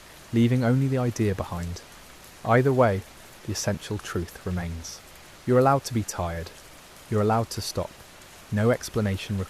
leaving only the idea behind. Either way, the essential truth remains. You're allowed to be tired. You're allowed to stop. No explanation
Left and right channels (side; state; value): both; identical; correlation 1.00